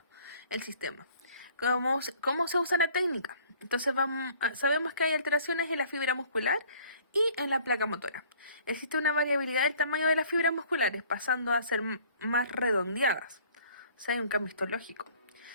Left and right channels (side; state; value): both; inverted; correlation -0.55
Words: el sistema. ¿Cómo se usa la técnica? Entonces sabemos que hay alteraciones en la fibra muscular y en la placa motora. Existe una variabilidad del tamaño de las fibras musculares, pasando a ser más redondeadas. O sea, hay un cambio histológico.